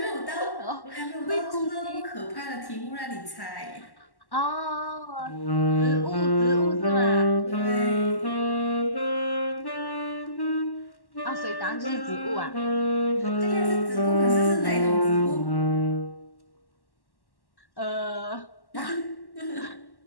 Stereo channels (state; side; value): late; right; 1.1 ms